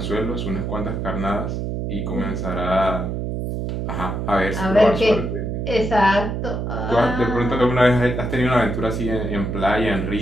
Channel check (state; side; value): noise; right; hum, 3 dB below the sound